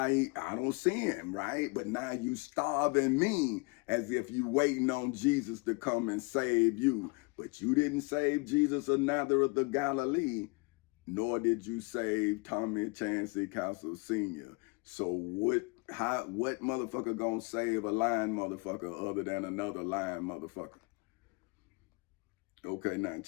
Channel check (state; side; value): quieter; right; 28.7 dB